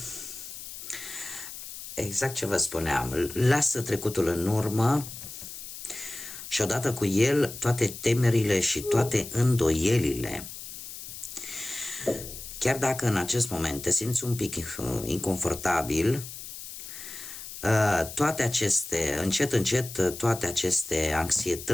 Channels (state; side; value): noise; left; hiss, 11 dB below the sound